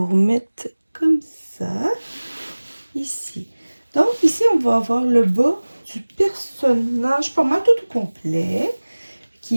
remettre comme ça. Ici. Donc, ici, on va avoir le bas du personnage, pas mal tout au complet,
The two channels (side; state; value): both; inverted; correlation -1.00